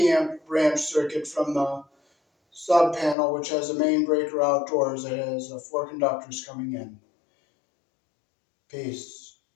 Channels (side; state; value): right; drops out; at 3.2 s